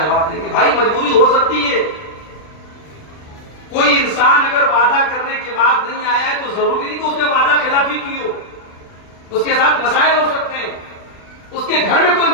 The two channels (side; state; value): right; late; 39 ms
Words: دیں گے؟ بھائی مجبوری ہو سکتی ہے. کوئی انسان اگر وعدہ کرنے کے بعد نہیں آیا ہے تو ضروری نہیں کہ اس نے وعدہ خلافی کی ہو. اس کے ساتھ مسائل ہو سکتے ہیں، اس کے گھر میں کوئی